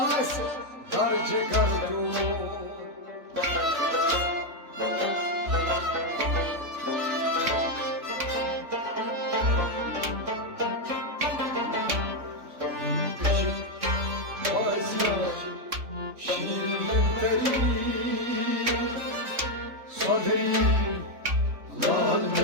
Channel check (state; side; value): late; left; 3.4 ms